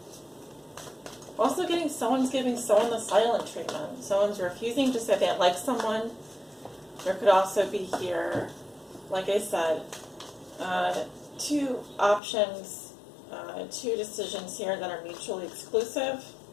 Also someone's giving someone the silent treatment. Someone's refusing to say they like someone. There could also be here, like I said, two options, two decisions here that are mutually exclusive.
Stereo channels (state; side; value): drops out; right; at 12.2 s